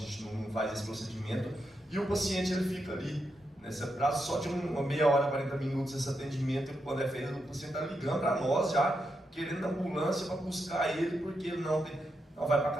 não faz esse procedimento, e o paciente ele fica ali, nesse prazo só de uma meia hora, 40 minutos esse atendimento, e quando é feito, o paciente está ligando para nós já, querendo ambulância para buscar ele, porque ele não vai para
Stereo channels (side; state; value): both; normal; correlation 0.84